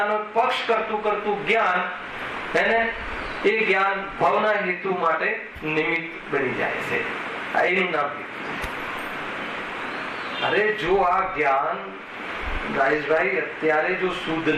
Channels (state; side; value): identical; both; correlation 1.00